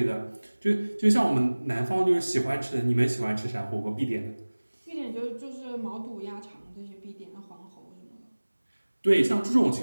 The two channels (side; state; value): both; inverted; correlation -1.00